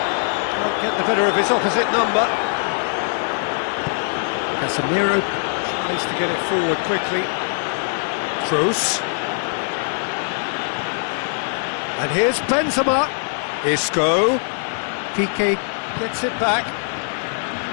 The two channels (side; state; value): right; silent; digital silence